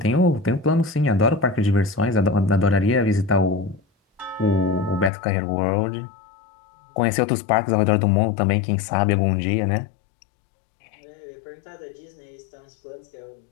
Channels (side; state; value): right; drops out; at 5.1 s